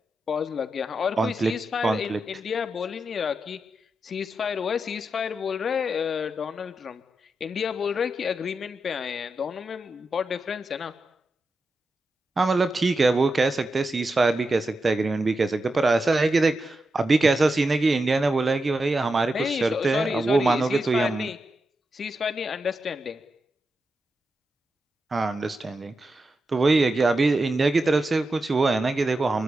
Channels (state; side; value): normal; both; correlation 0.88